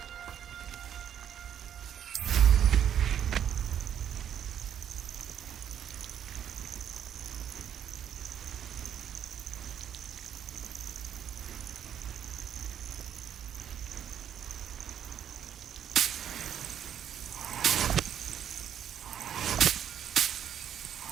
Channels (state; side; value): quieter; left; 9.4 dB